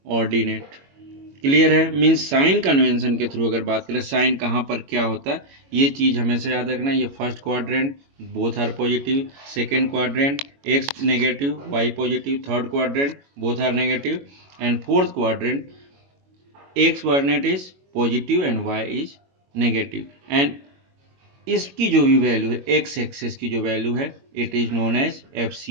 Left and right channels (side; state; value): left; late; 22 ms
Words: ऑर्डिनेट। क्लियर है? मीन्स साइन कन्वेंशन के थ्रू अगर बात करें साइन कहाँ पर क्या होता है, ये चीज हमेशा याद रखना। ये first quadrant both are positive, second quadrant X negative Y positive, third quadrant both are negative, and fourth quadrant X coordinate is positive and Y is negative. And इसकी जो भी वैल्यू है एक्स एक्सेस की जो value है it is known as